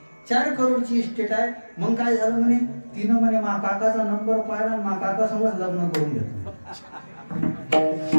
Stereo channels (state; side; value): inverted; both; correlation -1.00